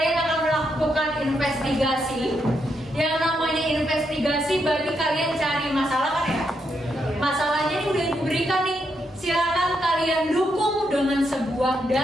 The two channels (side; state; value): both; normal; correlation 0.80